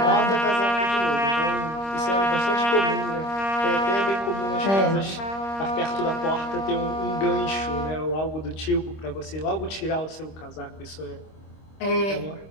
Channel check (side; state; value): right; late; 25 ms